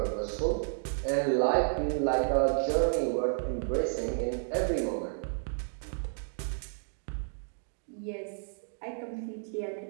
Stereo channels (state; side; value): silent; left; digital silence